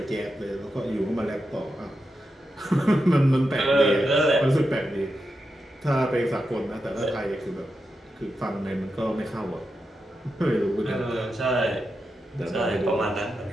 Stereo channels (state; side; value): normal; both; correlation 0.88